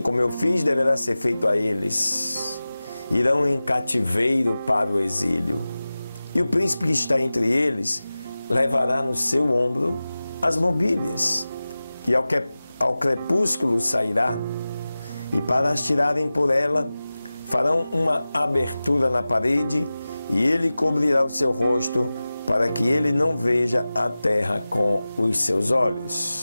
como eu fiz, deverá ser feito a eles. Irão em cativeiro para o exílio. E o príncipe que está entre eles levará no seu ombro as mobílias, e ao crepúsculo sairá, e para as tirarem por ela, farão uma abertura na parede, e ele cobrirá o seu rosto, para que ele não veja a terra com os seus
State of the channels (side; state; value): both; inverted; correlation -0.96